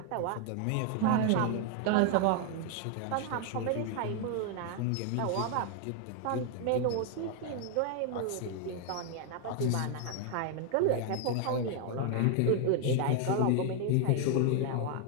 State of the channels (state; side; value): different; both; correlation 0.00